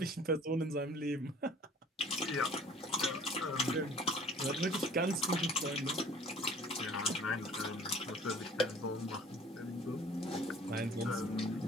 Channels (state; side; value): normal; both; correlation 0.51